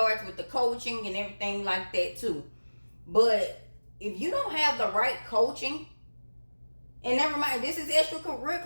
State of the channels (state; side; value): inverted; both; correlation -1.00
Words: with the coaching and everything like that too. But if you don't have the right coaching, and never mind, this is